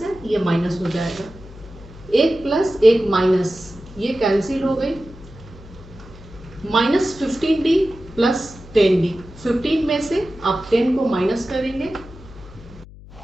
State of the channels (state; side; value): noise; left; hum, 18 dB below the sound